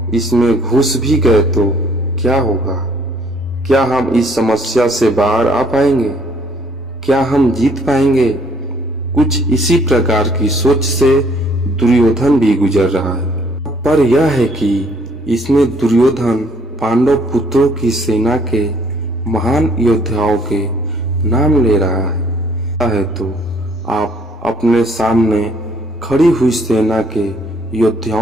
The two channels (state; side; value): normal; both; correlation 0.62